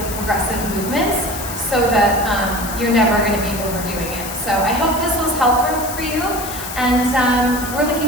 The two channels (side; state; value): left; noise; hiss, 9 dB below the sound